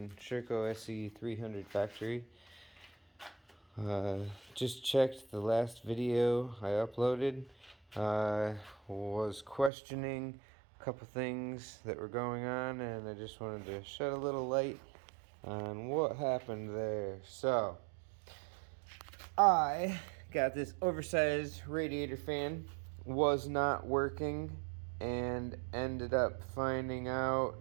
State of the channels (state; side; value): drops out; left; at 9.7 s